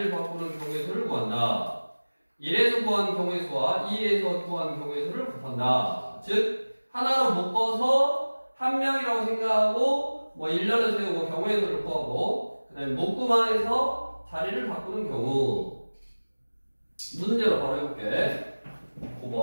바꾸는 경우의 수를 구한다. 1에서 구한 경우의 수와 2에서 구한 경우의 수를 곱한다. 즉 하나로 묶어서 한 명이라고 생각하고 뭐 일렬을 세우고 경우의 수를 구하고 그 다음에 묶음 안에서 자리를 바꾸는 경우. 문제로 바로 해볼게.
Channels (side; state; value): both; inverted; correlation -1.00